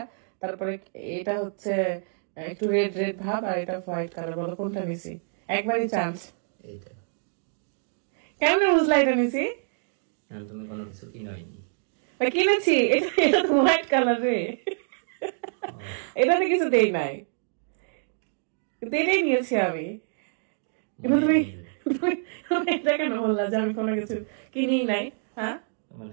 তারপরে এটা হচ্ছে একটু রেড রেড ভাব, আর এটা হোয়াইট কালার। বলো কোনটা নিছি? একবারই চান্স। এইটা কেমন বুঝলা এটা নিছি? তুমি কোনো কিছু কিনোইনি। কিনেছি, এটা তো হোয়াইট কালার রে, এটাতে কিছু দেই নাই, কিন্তু এটাই নিয়েছি আমি। কিন্তু তুমি এটা কেন বললা যে আমি কোনো কিছু কিনি নাই? হ্যাঁ, তোমার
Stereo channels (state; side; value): silent; left; digital silence